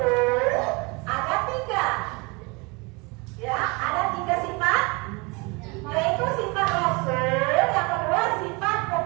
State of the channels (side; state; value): left; quieter; 28.0 dB